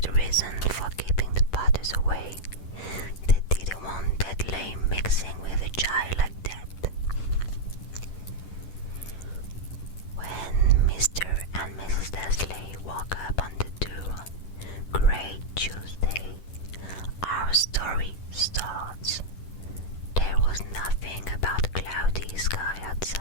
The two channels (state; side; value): late; right; 10 ms